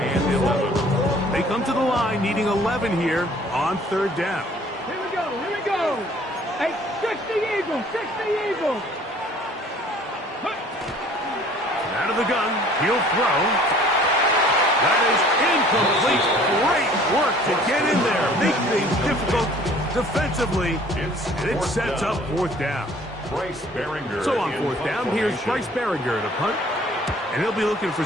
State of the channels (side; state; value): both; normal; correlation 0.54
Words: 11. They come to the line needing 11 here on 3rd down. Here we go, here we go. Hey, 60 Eagles, 60 Eagles. Out of the gun, he'll throw. That is incomplete. Great work to get in there. Make things difficult defensively. And it sets up 4th down. Bryce Baringer. So on 4th down, here's Bryce Baringer to punt. And he'll be looking for